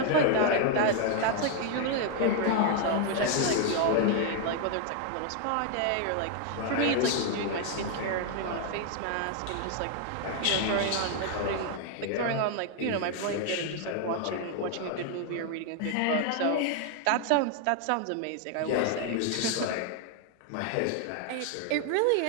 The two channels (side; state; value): both; different; correlation 0.00